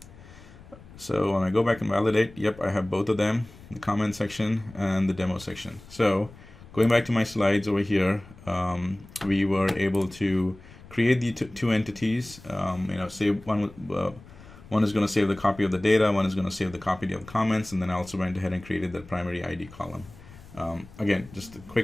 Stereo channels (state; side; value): noise; left; rumble, 20 dB below the sound